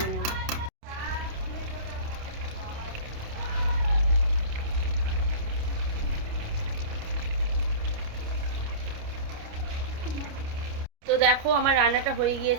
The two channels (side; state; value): left; late; 29 ms